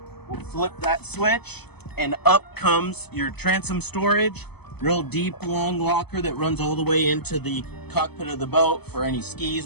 we'll flip that switch and up comes your transom storage. Real deep, long locker that runs all the way into the cockpit of the boat for any skis,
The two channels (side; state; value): right; late; 0.98 ms